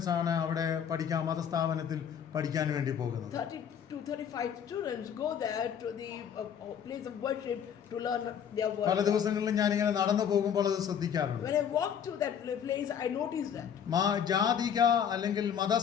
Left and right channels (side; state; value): right; quieter; 8.2 dB